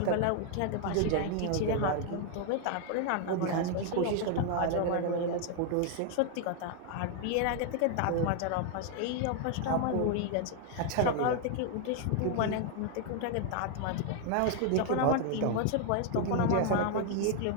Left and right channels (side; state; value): both; different; correlation 0.00